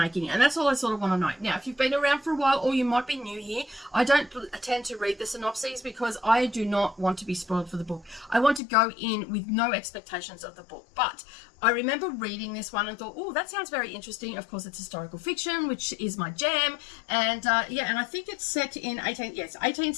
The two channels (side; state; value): right; drops out; at 8.6 s